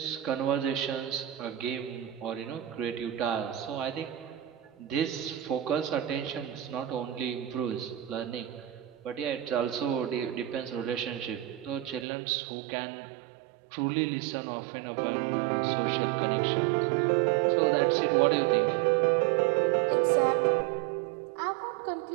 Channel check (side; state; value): left; drops out; at 12.1 s